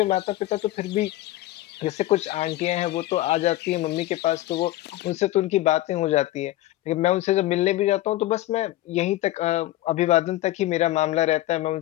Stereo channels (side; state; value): right; quieter; 15.9 dB